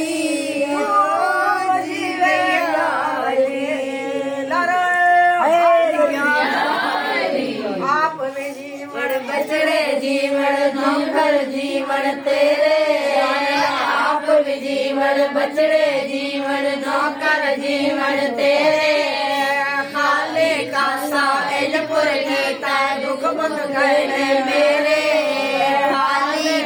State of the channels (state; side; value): identical; both; correlation 1.00